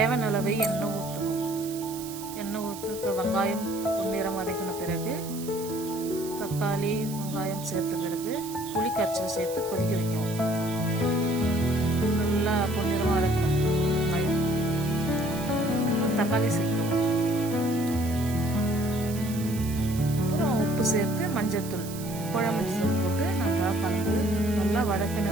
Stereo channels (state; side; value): noise; right; hiss, 13 dB below the sound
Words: அளவு எண்ணெய் ஊற்றணும். எண்ணெய் ஊற்று வெங்காயம் பொன்னிறம் வதக்கின பிறகு தக்காளி வெங்காயம் சேர்த்த பிறகு புளி கரைச்சல் சேர்த்து கொதிக்க வைக்கணும். நல்லா பொன்னிறமாக வதக்கணும். வெங்காயம் தக்காளி சேர்க்கணும். அப்புறம் உப்பு சேர்த்து மஞ்சத்தூள் குழம்பு மஞ்சள் போட்டு நல்லா கலந்து நல்லா வதக்கின